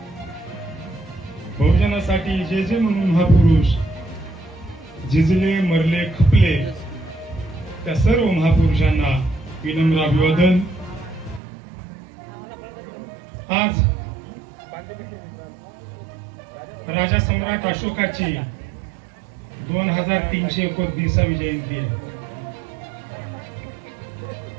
बहुजनासाठी जे जे म्हणून महापुरुष झिजले मरले खपले त्या सर्व महापुरुषांना विनम्र अभिवादन. आज राजा सम्राट अशोकाची 2329वी जयंती आहे.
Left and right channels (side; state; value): left; drops out; at 11.4 s